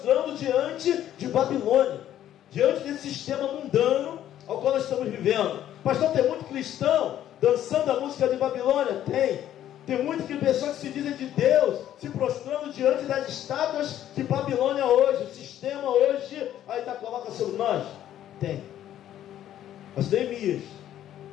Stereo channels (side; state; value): right; quieter; 11.6 dB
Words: diante de Babilônia, diante desse sistema mundano ao qual nós estamos vivendo. Pastor, tem muito cristão dançando a música de Babilônia? Tem muitas pessoas que se dizem de Deus, se prostrando diante das estátuas de Babilônia hoje. O sistema hoje ainda coloca sobre nós? Tem. Mas Neemias,